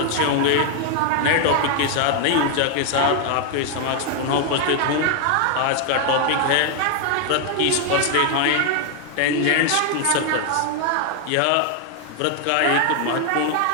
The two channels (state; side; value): different; both; correlation 0.00